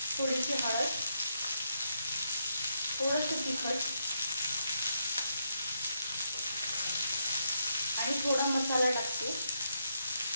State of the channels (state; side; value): inverted; both; correlation -0.79